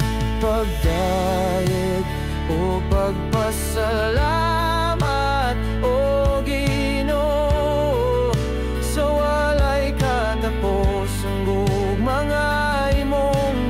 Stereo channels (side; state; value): both; identical; correlation 1.00